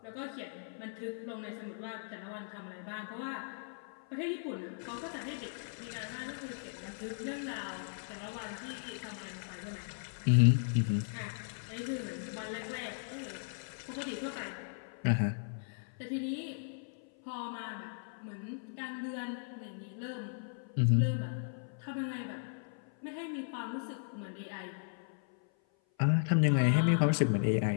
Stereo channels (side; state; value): right; silent; 53 dB below the other